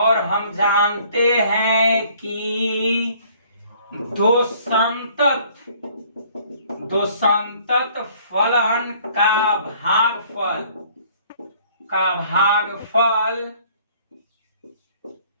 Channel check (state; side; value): inverted; both; correlation -0.57